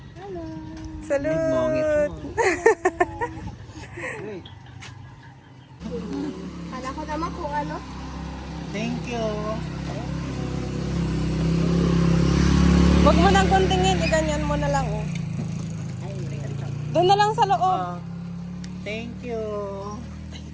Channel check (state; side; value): identical; both; correlation 1.00